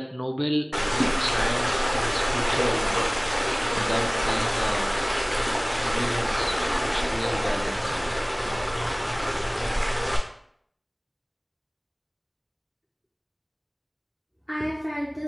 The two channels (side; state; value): both; identical; correlation 1.00